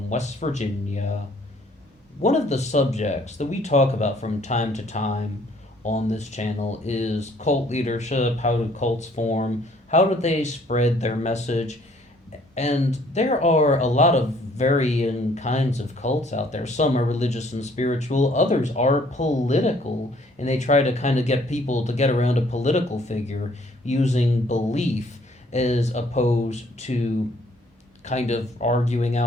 West Virginia. One of the subjects that we talk about from time to time on this channel is cult leadership. How do cults form? How do they spread their message? And there are a lot of varying kinds of cults out there. Some are religious and spiritual, others are political, and they try to kind of get people to get around a political figure using belief as opposed to kind of arguing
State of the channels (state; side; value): normal; both; correlation 0.61